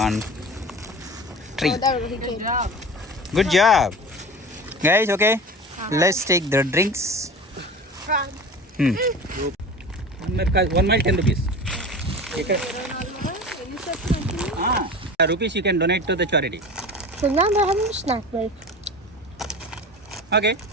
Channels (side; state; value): both; normal; correlation 0.34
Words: on tree. Oh, that was a good job. Good job. Guys, okay. Let's take the drinks. Prime. 1 mile 10 rupees. Rupees you can donate to the charity. So now they're having a snack break. Okay.